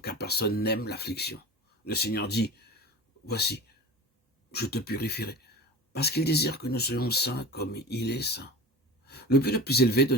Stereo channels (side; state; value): both; normal; correlation 0.33